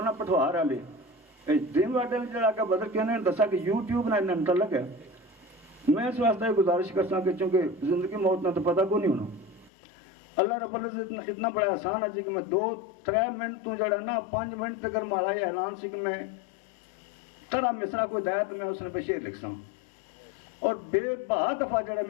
پٹھوار والے اے ڈریم ورلڈ والے جڑا کہ بدر کہنے دسا کہ یوٹیوب نال متعلق ہے میں اس واسطے گزارش کرساں کہ چونکہ زندگی موت نہ تو پتہ کو نہیں ہونا اللہ رب العزت اتنا بڑا آسان ہے کہ میں 2-3 منٹ تو جڑا نا 5 منٹ تک مارا یہ اعلان سی کہ میں ترا مصرا کوئی دیا تو میں اس نے پہ شعر لکھ ساں اور بے بہا دفعہ جڑا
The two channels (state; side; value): drops out; right; at 9.7 s